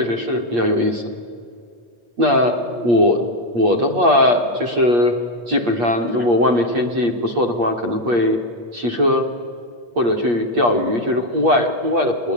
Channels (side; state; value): left; late; 8.5 ms